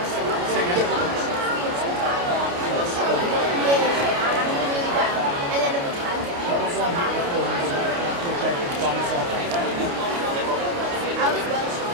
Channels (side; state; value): left; late; 29 ms